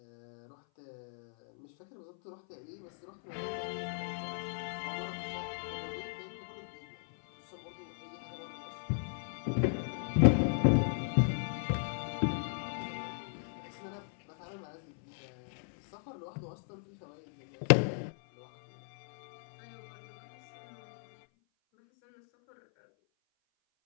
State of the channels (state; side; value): silent; right; 54 dB below the other